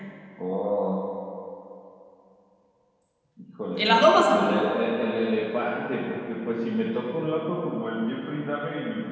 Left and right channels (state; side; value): identical; both; correlation 1.00